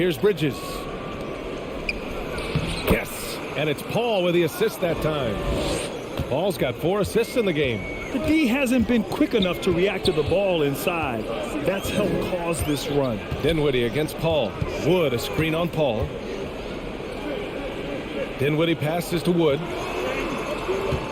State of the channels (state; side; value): identical; both; correlation 1.00